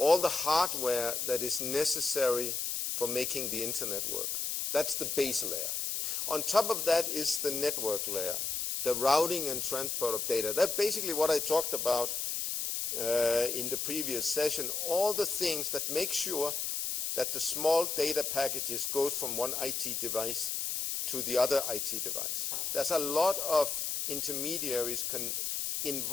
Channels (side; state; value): left; noise; hiss, 1 dB below the sound